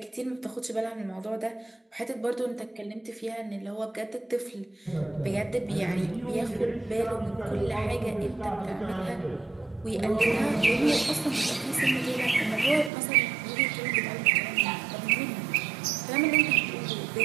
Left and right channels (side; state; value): left; drops out; at 12.9 s